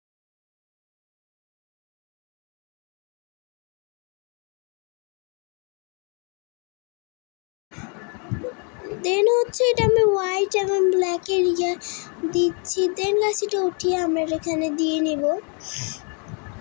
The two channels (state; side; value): quieter; right; 37.8 dB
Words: দেন হচ্ছে এটা আমি হোয়াইট এবং ব্ল্যাকের দিচ্ছি। দেন গাছ এটা উঠিয়ে আমরা এখানে দিয়ে নিব।